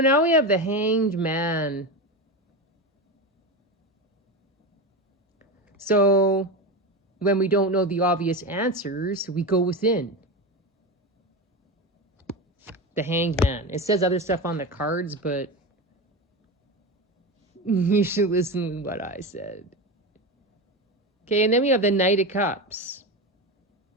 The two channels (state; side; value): normal; both; correlation 0.20